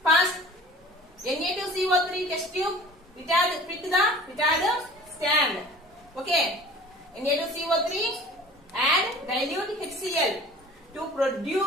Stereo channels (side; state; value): both; normal; correlation 0.44